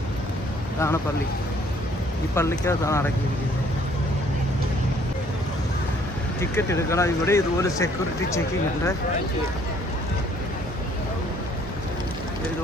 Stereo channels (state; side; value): normal; both; correlation 0.61